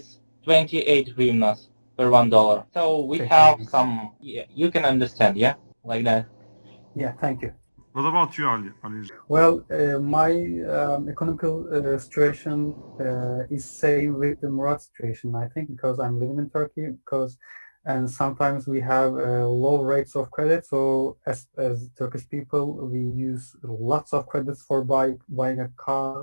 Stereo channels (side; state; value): both; inverted; correlation -1.00